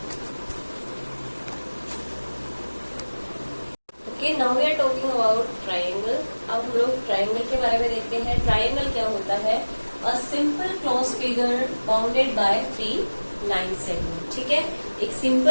okay, now we are talking about triangle. अब हम लोग ट्राइंगल के बारे में देखते हैं। ट्राइंगल क्या होता है, a simple close figure bounded by 3 line segment. ठीक है, एक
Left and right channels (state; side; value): inverted; both; correlation -1.00